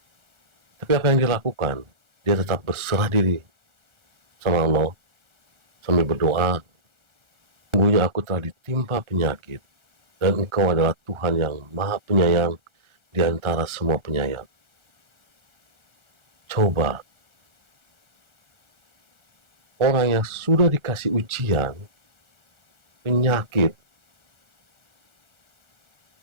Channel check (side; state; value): left; late; 1.4 ms